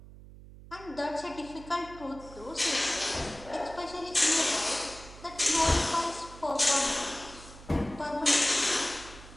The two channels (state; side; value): noise; right; hum, 18 dB below the sound